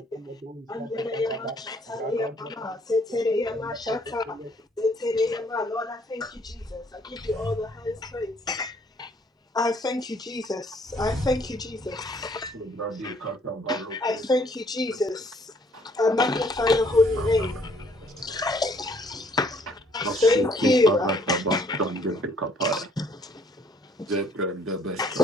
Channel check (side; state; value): both; normal; correlation 0.63